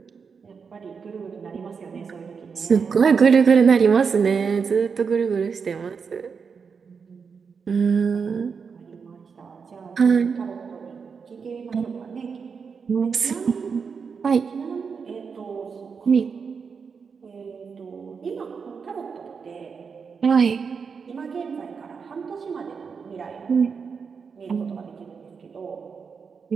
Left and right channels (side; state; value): left; quieter; 5.8 dB